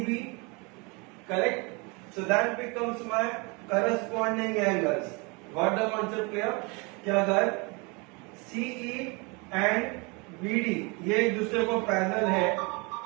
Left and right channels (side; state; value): left; quieter; 29.5 dB